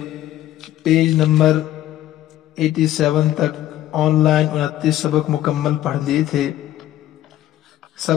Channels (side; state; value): right; quieter; 13.3 dB